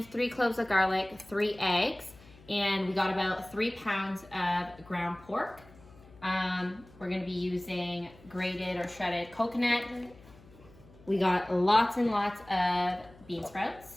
3 cloves of garlic, 3 eggs, and we got about 3 pounds of ground pork. We're gonna be using grated or shredded coconut. We got lots and lots of bean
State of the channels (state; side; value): noise; left; hum, 24 dB below the sound